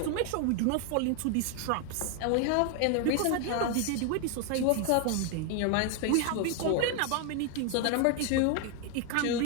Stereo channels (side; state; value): both; different; correlation 0.01